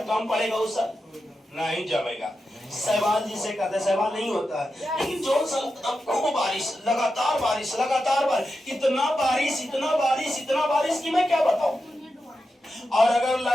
कम पड़ेगा उस साल नहीं जमेगा। शैवाल जिसे कहते हैं शैवाल नहीं होता है लेकिन जो साल खूब बारिश लगातार बारिश इतना बारिश कि मैं क्या बताऊं। और अगर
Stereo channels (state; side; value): normal; both; correlation 0.89